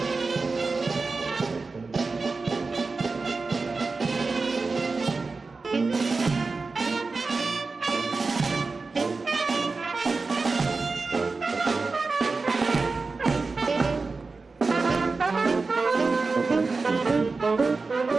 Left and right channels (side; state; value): left; quieter; 4.0 dB